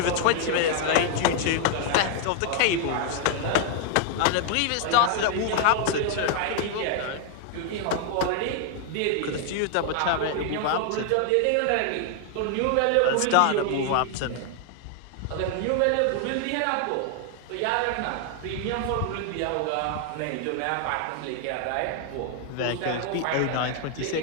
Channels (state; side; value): different; both; correlation 0.00